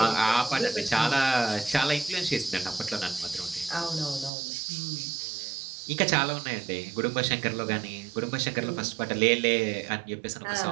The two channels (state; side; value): drops out; left; at 4.3 s